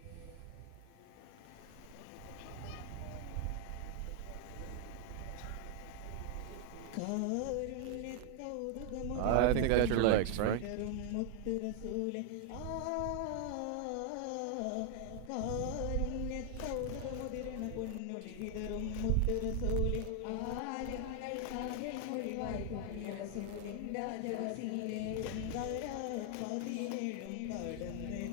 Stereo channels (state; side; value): different; both; correlation 0.00